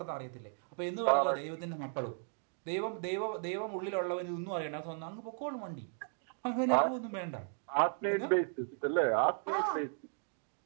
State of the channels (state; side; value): silent; left; 54 dB below the other